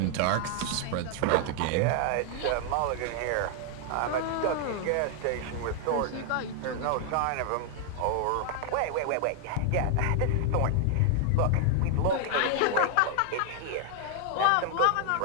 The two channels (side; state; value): both; different; correlation 0.00